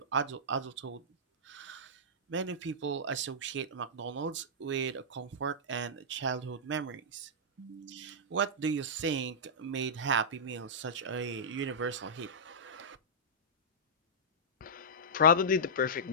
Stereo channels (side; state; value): both; normal; correlation -0.16